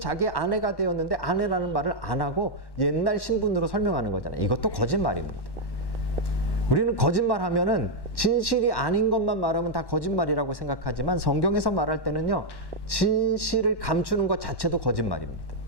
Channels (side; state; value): right; late; 1.1 ms